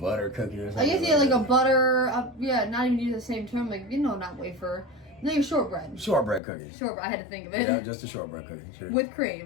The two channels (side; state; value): right; drops out; at 6.4 s